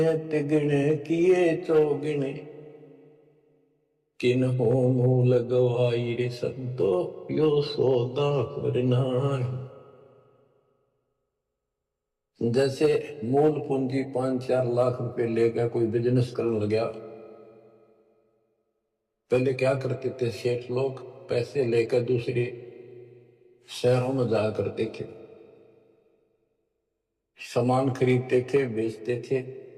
तिगने किए चौगने, किन हो मूल गवाई रे संतो यो सौदा फिरना। जैसे मूल पूंजी 5-4 लाख रुपए लेकर कोई बिजनेस करने लगा, पहले क्या करते थे सेठ लोग, पैसे लेकर दूसरे शहरों में जाया करते थे, सामान खरीदते थे बेचते थे,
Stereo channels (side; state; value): both; identical; correlation 1.00